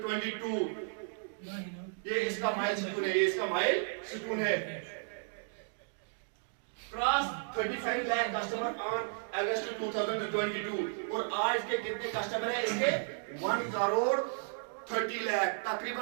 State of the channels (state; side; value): silent; left; digital silence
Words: ये इसका mile stone है, ये इसका mile stone है। Cross 35 lakh customer on August 2022। और आज के कितने कस्टमर हैं इसके, 1 करोड़ 30 लाख